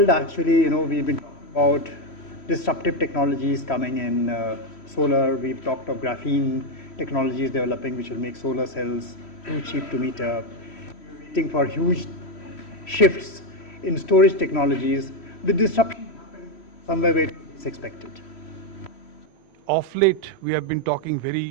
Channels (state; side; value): late; right; 3.1 ms